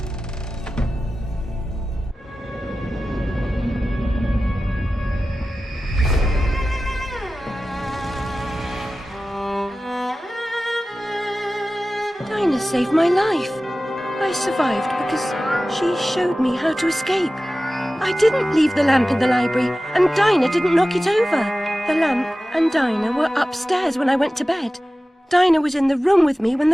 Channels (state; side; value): normal; both; correlation 0.95